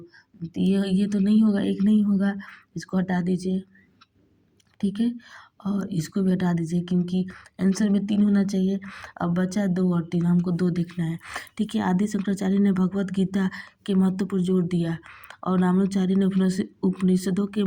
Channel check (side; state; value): both; identical; correlation 1.00